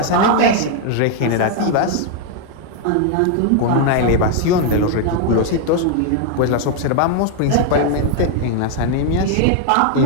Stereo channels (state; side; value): different; both; correlation 0.00